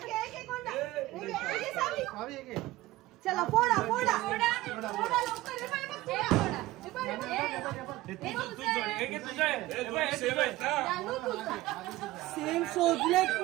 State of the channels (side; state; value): left; quieter; 17.5 dB